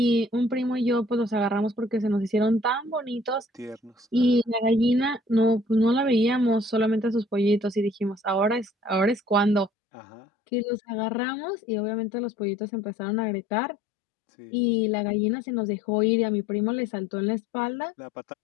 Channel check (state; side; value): drops out; right; at 9.7 s